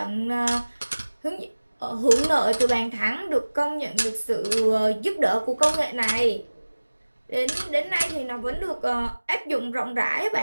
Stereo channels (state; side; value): inverted; both; correlation -1.00